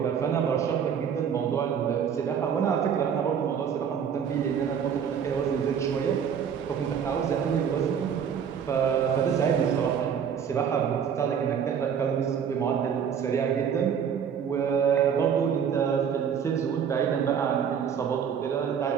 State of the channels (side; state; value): left; quieter; 7.7 dB